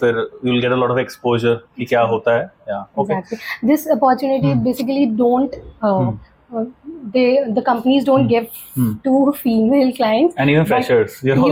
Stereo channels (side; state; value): both; identical; correlation 1.00